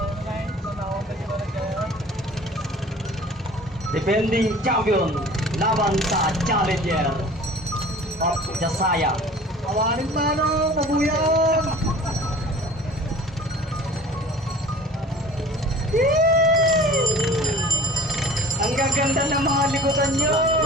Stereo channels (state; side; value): normal; both; correlation 0.45